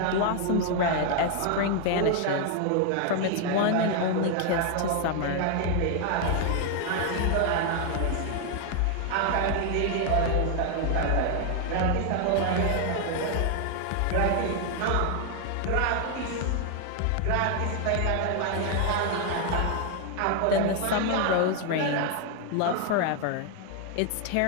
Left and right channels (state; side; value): different; both; correlation 0.00